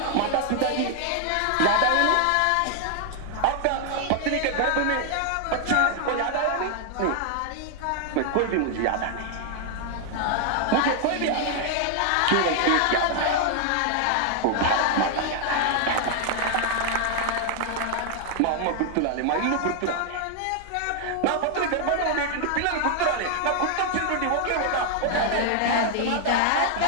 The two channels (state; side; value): different; both; correlation 0.00